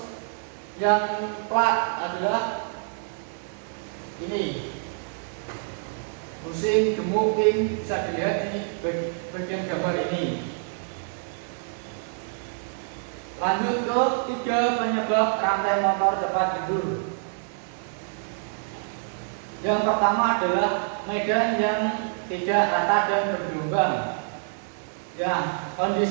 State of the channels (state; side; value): silent; left; digital silence